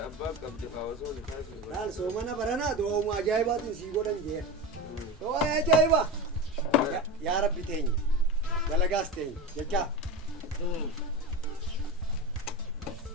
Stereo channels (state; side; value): normal; both; correlation 0.24